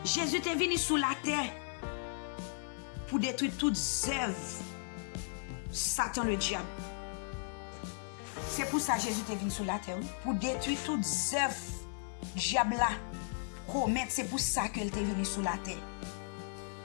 Jésus est venu sur la terre pour détruire toutes œuvres Satan le diable. C'est pour ça que Jésus est venu sur la terre, pour détruire toutes œuvres diable là commettre. C'est pour ça qu'il est venu sur la terre.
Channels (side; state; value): right; silent; 54 dB below the other